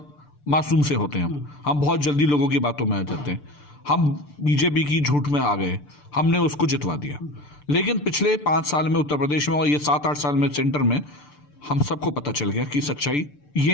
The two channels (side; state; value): right; late; 6.8 ms